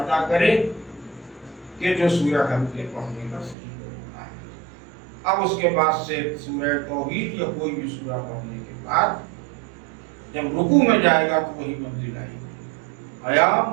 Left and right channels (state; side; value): drops out; left; at 3.6 s